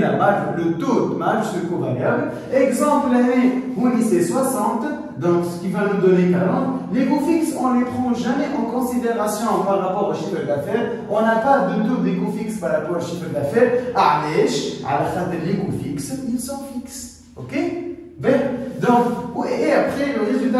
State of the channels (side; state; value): both; identical; correlation 1.00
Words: marge, le taux de marge sur le coût variable. Exemple l'année où c'est 60, donc ce qui va nous donner 40. Les coûts fixes, on ne les prend jamais en considération par rapport au chiffre d'affaires. On n'a pas de taux des coûts fixes par rapport au chiffre d'affaires. علاش؟ على خاطر les coûts fixes, ils sont fixes. Ok? Donc, et après, le